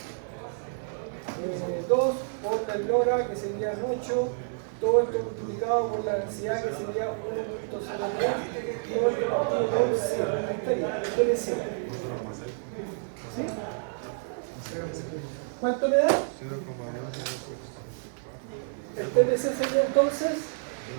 2 por la lora que sería 8, todo esto multiplicado por la densidad que sería 1.03 por el partido por 100. Ahí estaría, el TPC. ¿Sí? ¿Cuánto me da? 0,1. El TPC sería entonces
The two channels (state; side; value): silent; left; 59 dB below the other